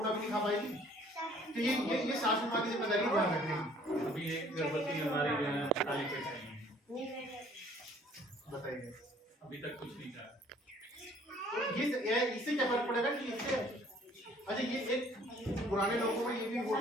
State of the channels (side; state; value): both; normal; correlation 0.56